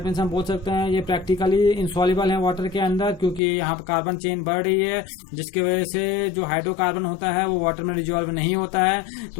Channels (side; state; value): right; drops out; at 3.4 s